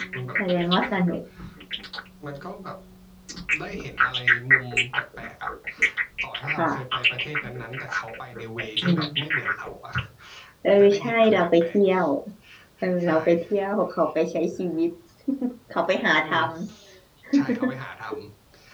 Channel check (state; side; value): identical; both; correlation 1.00